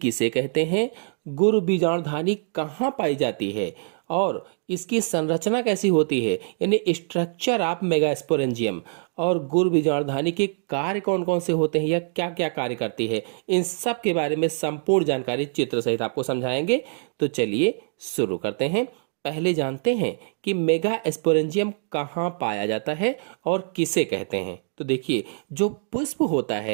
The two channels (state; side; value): silent; left; digital silence